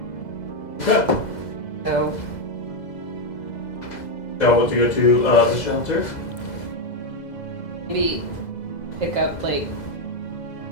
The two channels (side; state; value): right; late; 2.0 ms